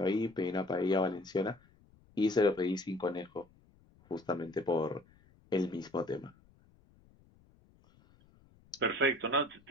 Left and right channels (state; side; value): noise; left; rumble, 29 dB below the sound